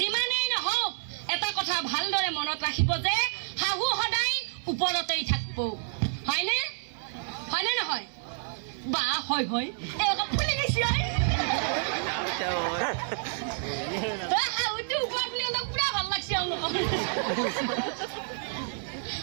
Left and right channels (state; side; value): silent; left; digital silence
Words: নহওক এটা কথা ভালদৰে মনত ৰাখিব যে শাহু সদায় ওপৰতেই থাকিব হয়নে হয়নে নহয় বা হয় হয় ফুলি গৈছে শাহুটো ওপৰ বুলি পুৰা ভাল লাগছে